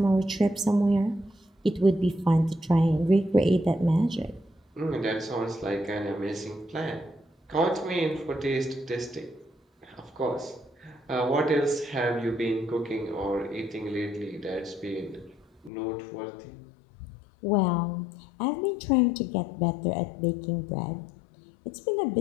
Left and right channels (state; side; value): drops out; right; at 15.7 s